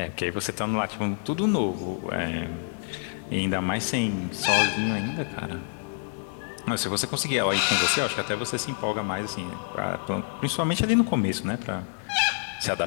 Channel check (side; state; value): right; silent; 57 dB below the other